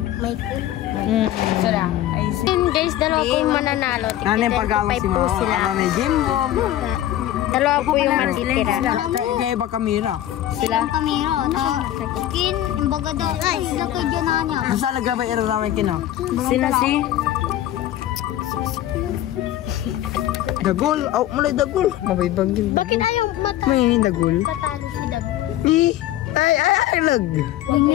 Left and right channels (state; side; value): quieter; right; 13.1 dB